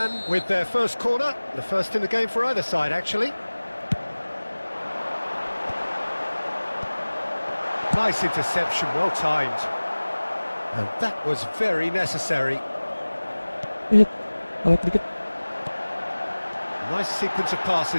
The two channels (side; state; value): both; inverted; correlation -1.00